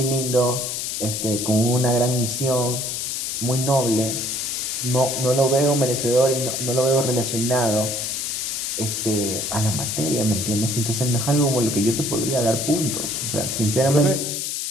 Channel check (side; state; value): left; noise; hiss, 3 dB below the sound